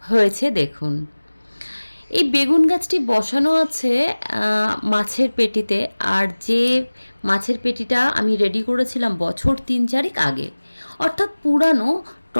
হয়েছে দেখুন। এই বেগুন গাছটি বসানো আছে মাছের পেটিতে, আর যে মাছের পেটিটা আমি রেডি করেছিলাম বছর 3-4 আগে, অর্থাৎ পুরানো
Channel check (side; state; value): both; inverted; correlation -1.00